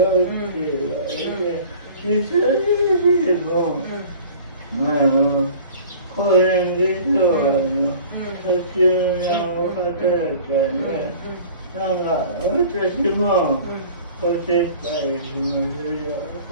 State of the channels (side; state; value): both; inverted; correlation -0.45